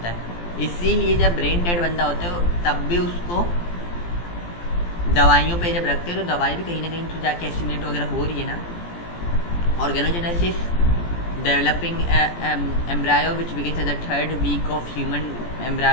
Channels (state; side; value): late; right; 17 ms